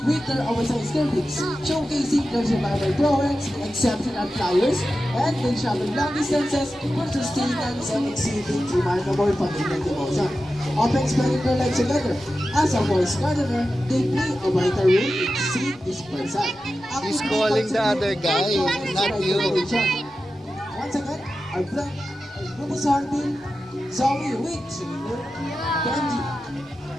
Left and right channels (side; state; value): both; normal; correlation 0.92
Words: their oversized cervix, showcasing their survival prowess, exceptional flyers, and they travel long distances for sustenance and exhibiting remarkable familial devotion. Often spending their lives together. As a forest gardener, they play a vital role in seed dispersal. He's calling the other guy, not you. Once again, our friend, Rufous Hornbill, Zoe with Benji.